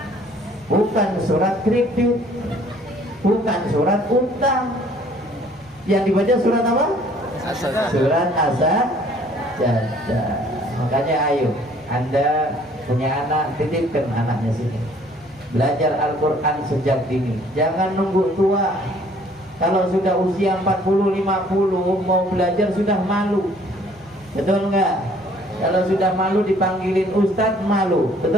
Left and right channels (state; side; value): normal; both; correlation 0.58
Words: bukan surat kredit, bukan surat utang. Yang dibaca surat apa? Surat As-Sajdah. Makanya ayo, Anda punya anak, titipkan anaknya sini, belajar Al-Quran sejak dini. Jangan nunggu tua. Kalau sudah usia 40-50 mau belajar sudah malu. Betul enggak? Kalau sudah malu dipanggilin ustadz, malu.